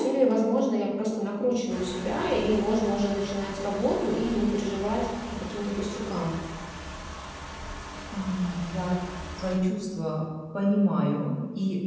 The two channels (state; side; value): identical; both; correlation 1.00